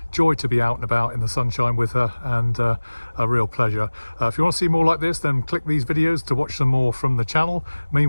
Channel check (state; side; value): inverted; both; correlation -1.00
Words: Joy to be out and about in the sunshine with her, and a real pleasure. If you want to see more like this, then click these videos to watch some more from the channel.